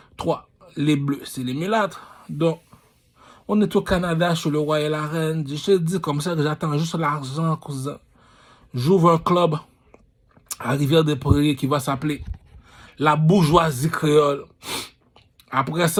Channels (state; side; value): identical; both; correlation 1.00